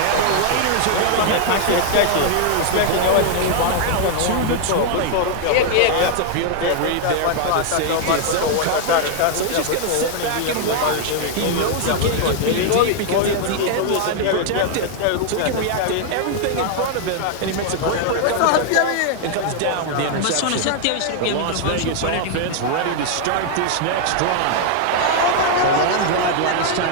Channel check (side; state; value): both; different; correlation 0.00